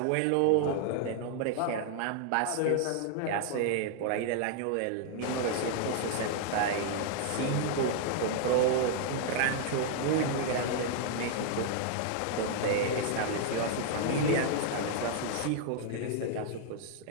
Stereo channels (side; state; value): both; different; correlation 0.00